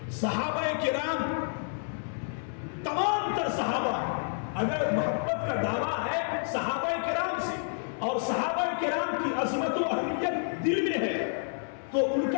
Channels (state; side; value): silent; right; digital silence